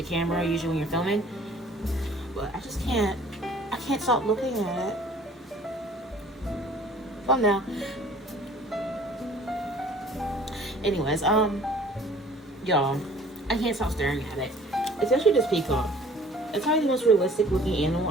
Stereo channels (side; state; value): both; normal; correlation 0.52